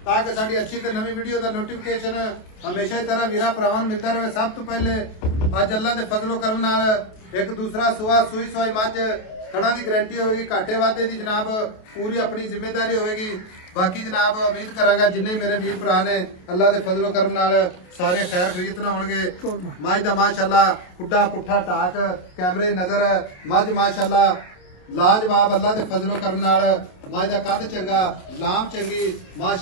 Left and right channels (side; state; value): right; late; 28 ms